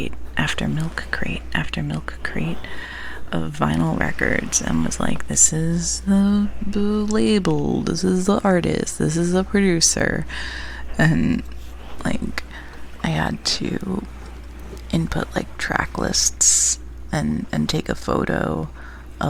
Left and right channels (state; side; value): identical; both; correlation 1.00